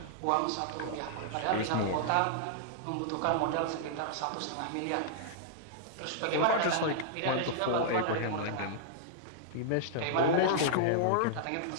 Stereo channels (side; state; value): both; different; correlation -0.01